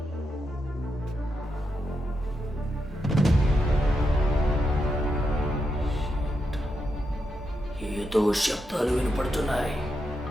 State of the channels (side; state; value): both; normal; correlation 0.85